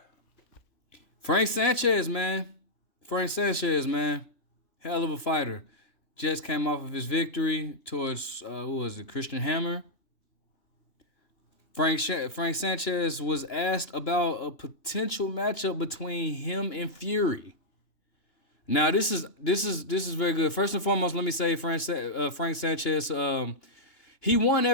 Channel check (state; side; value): late; right; 2.9 ms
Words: Frank Sanchez, man. Frank Sanchez, man. Hell of a fighter. Just came off of his victory towards, who was it, Christian Hammer. Frank Sanchez was asked about a potential matchup between him and Fury. Now this is very good. First and foremost, let me say Frank Sanchez. He won